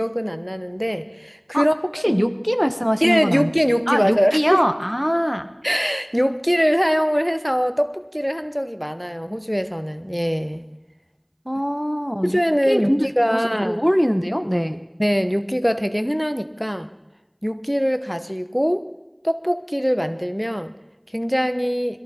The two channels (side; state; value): both; identical; correlation 1.00